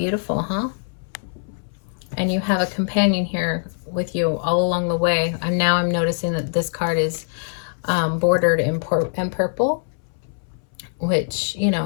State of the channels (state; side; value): silent; right; 64 dB below the other